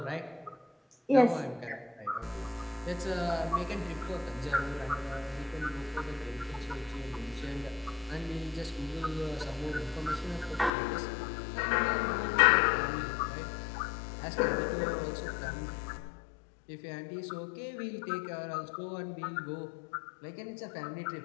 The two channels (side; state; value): right; drops out; at 10.7 s